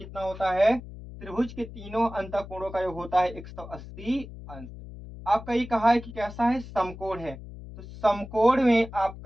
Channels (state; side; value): noise; left; hum, 14 dB below the sound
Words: होता है? त्रिभुज के तीनों अंतःकोणों का योग होता है 180 अंश। आपका ये कहा है कि कैसा है? समकोण है। तो समकोण में